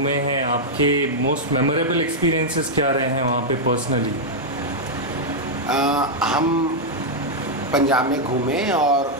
हैं, आपके मोस्ट मेमोरेबल एक्सपीरियंसेस क्या रहे हैं वहाँ पे पर्सनली? हम पंजाब में घूमे और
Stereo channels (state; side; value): normal; both; correlation -0.04